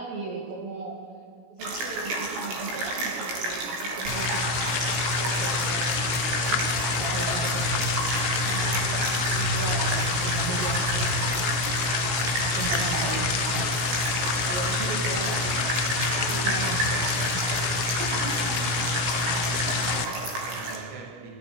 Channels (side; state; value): left; late; 17 ms